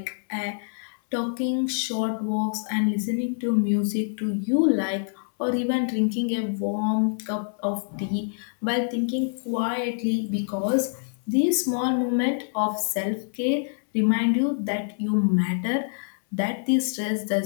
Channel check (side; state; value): right; silent; 61 dB below the other